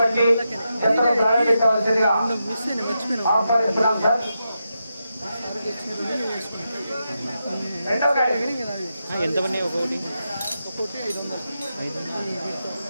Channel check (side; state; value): both; inverted; correlation -0.87